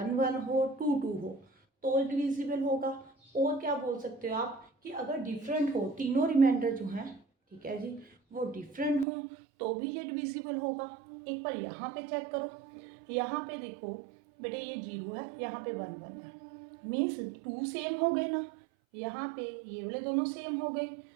1 हो, 2 2 हो तो डिविजिबल होगा। और क्या बोल सकते हो आप कि अगर डिफरेंट हो, तीनों रिमाइंडर जो हैं, ठीक है जी, वो डिफरेंट हो तो भी ये डिविजिबल होगा। एक बार यहाँ पे चेक करो, यहाँ पे देखो बेटे ये 0 है, यहाँ पे 1 1 है, मीन्स 2 सेम हो गए ना, यहाँ पे ये वाले दोनों सेम हो गए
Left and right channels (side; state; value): left; drops out; at 9.1 s